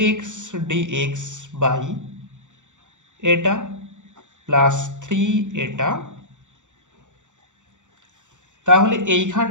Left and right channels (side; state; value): left; late; 0.85 ms